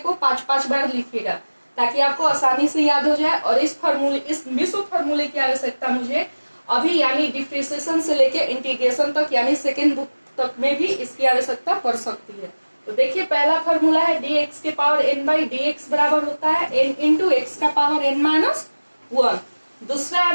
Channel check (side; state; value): both; inverted; correlation -1.00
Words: 5-5 बार लिखिएगा ताकि आपको आसानी से याद हो जाए। और इस 20 फॉर्मूले की आवश्यकता मुझे अभी यानी डिफरेंशिएशन से लेके इंटीग्रेशन तक यानी सेकेंड बुक तक में भी इसकी आवश्यकता पड़ सकती है। तो देखिए पहला फॉर्मूला है dx के पावर n बाई dx बराबर होता है n इंटू एक्स का पावर n माइनस 1। दूसरा